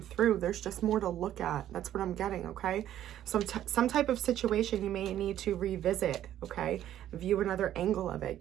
through. There's just more to look at. That's what I'm getting, okay? Some type of situation you may need to revisit, okay? View another angle of it.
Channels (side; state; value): left; quieter; 11.8 dB